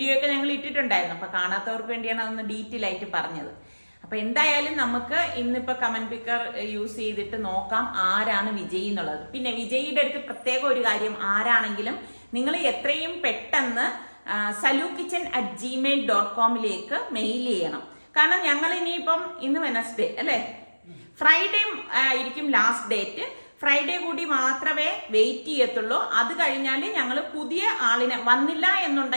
ഒക്കെ ഞങ്ങൾ ഇട്ടിട്ടുണ്ടായിരുന്നു. അപ്പൊ കാണാത്തവർക്ക് വേണ്ടിയാണ് അതൊന്ന് ഡീറ്റെയിൽ ആയിട്ട് പറഞ്ഞത്. അപ്പൊ എന്തായാലും നമുക്ക് ഇന്നിപ്പോ കമന്റ് പിക്കർ യൂസ് ചെയ്തിട്ട് നോക്കാം ആരാണ് വിജയി എന്നുള്ളത്. പിന്നെ വിജയിയുടെ അടുത്ത് പ്രത്യേക ഒരു കാര്യം, ആരാണെങ്കിലും നിങ്ങൾ എത്രയും പെട്ടെന്ന് salukitchen@gmail.com മെയിൽ ചെയ്യണം. കാരണം ഞങ്ങൾ ഇനിയിപ്പം ഇന്ന് വെനസ്ഡേ അല്ലേ, ഫ്രൈഡേ ആയിരിക്കും ലാസ്റ്റ് ഡേറ്റ്. ഫ്രൈഡേ കൂടി മാത്രമേ വെയിറ്റ് ചെയ്യത്തുള്ളൂ. അത് കഴിഞ്ഞാൽ ഞങ്ങൾ പുതിയ ആളിനെ വന്നില്ല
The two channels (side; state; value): both; inverted; correlation -1.00